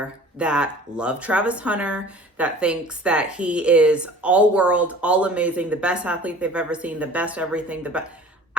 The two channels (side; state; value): both; normal; correlation 0.45